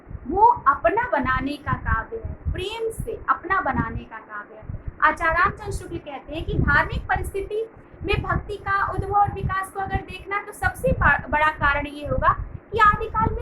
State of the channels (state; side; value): identical; both; correlation 1.00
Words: वो अपना बनाने का काव्य है, प्रेम से अपना बनाने का काव्य है। आचार्य रामचंद्र शुक्ल कहते हैं कि धार्मिक परिस्थिति में भक्ति का उद्भव और विकास को अगर देखना तो सबसे बड़ा कारण ये होगा कि आदिकाल